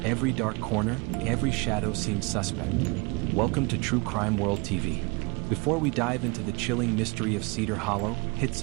Every dark corner, every shadow seemed suspect. Welcome to True Crime World TV. Before we dive into the chilling mystery of Cedar Hollow, hit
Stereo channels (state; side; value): quieter; left; 28.6 dB